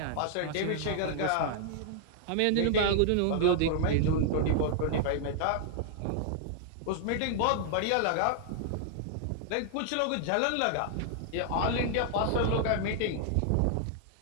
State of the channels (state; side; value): different; both; correlation 0.00